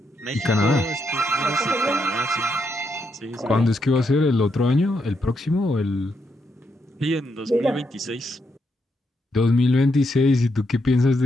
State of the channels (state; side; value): normal; both; correlation 0.80